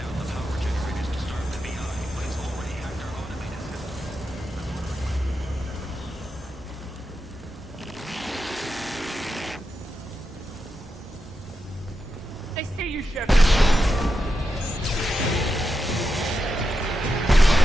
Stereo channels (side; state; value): both; normal; correlation 0.87